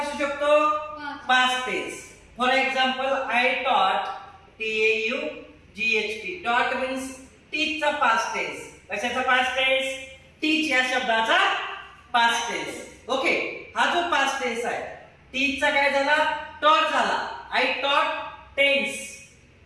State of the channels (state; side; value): identical; both; correlation 1.00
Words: शकतो? Past tense. For example I taught, TAUGHT. Taught means teach चा पास्ट टेन्स. कशाचा पास्ट टेन्स? टीच या शब्दाचा पास्ट टेन्स. ओके, हा जो पास्ट टेन्स आहे टीच चा काय झाला? टॉट झाला. आय टॉट टेन्स,